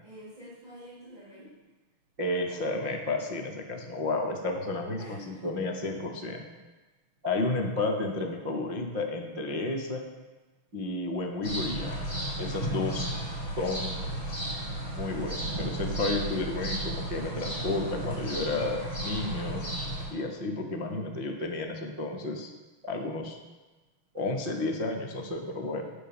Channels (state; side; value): late; left; 6.3 ms